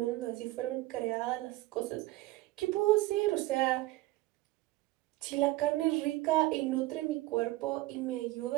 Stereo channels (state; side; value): quieter; left; 18.6 dB